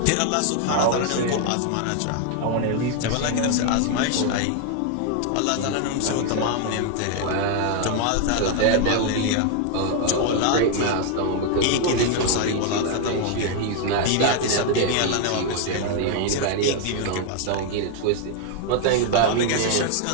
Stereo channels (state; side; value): different; both; correlation 0.00